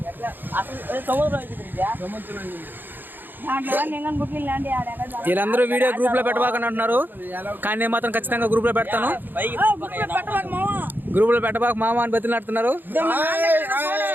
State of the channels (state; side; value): late; left; 0.092 ms